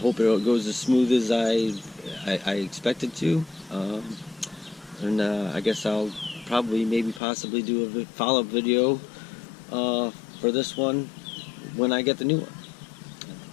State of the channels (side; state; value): right; drops out; at 7.2 s